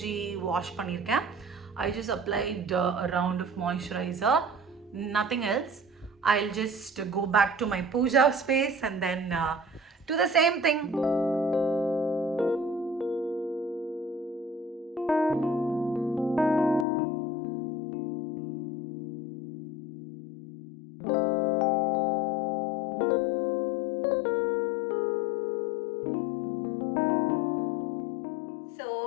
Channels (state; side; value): drops out; right; at 16.9 s